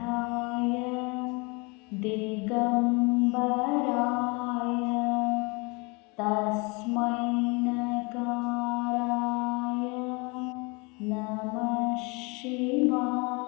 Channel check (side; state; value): right; quieter; 28.9 dB